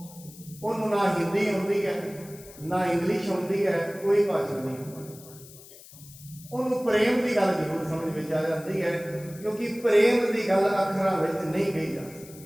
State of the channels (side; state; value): left; noise; hiss, 20 dB below the sound